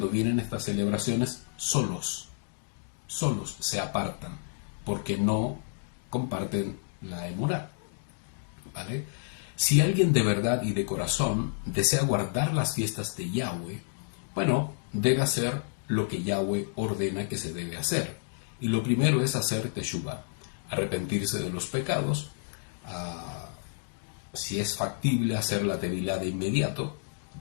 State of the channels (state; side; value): silent; right; digital silence